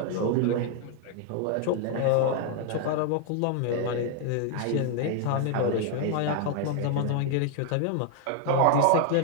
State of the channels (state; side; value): different; both; correlation 0.00